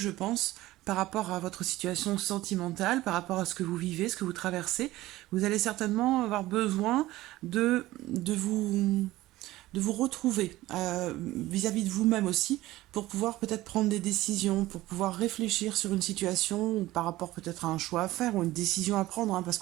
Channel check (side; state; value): left; quieter; 17.0 dB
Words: pense, par rapport à votre situation sentimentale, par rapport à ce que vous vivez, ce que vous traversez. Vous allez certainement avoir besoin de vous retrouver vis-à-vis de vous-même aussi, pour pouvoir peut-être prendre des décisions, pour pouvoir réfléchir sur une situation, ou par rapport peut-être à un choix à faire, ou une décision à prendre, hein, parce